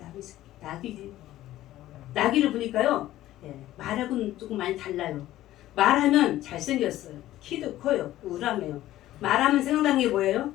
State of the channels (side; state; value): right; quieter; 14.5 dB